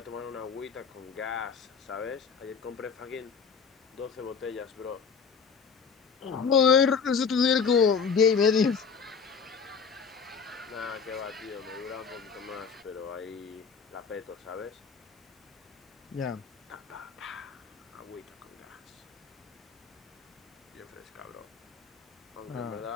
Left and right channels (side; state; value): right; quieter; 5.9 dB